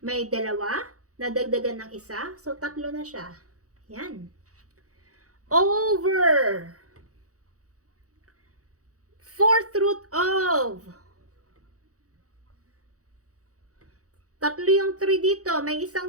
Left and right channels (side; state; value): left; late; 0.66 ms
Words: May dalawa, nadagdagan ng isa. So, tatlo na siya. Yan. Over 4th root of. Tatlo yung 3 dito. May